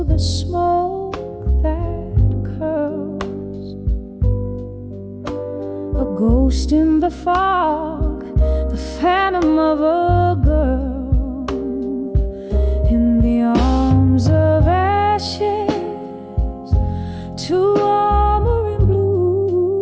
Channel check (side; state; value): both; identical; correlation 1.00